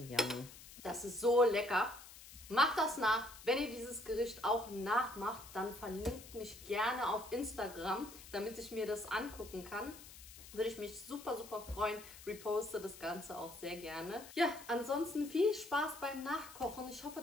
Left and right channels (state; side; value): noise; left; hiss, 17 dB below the sound